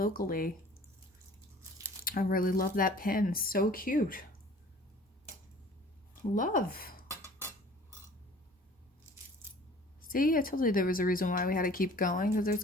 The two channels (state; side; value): normal; both; correlation 0.49